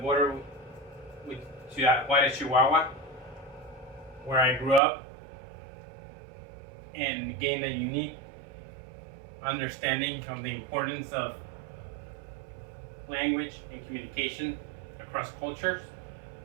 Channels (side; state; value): left; drops out; at 4.8 s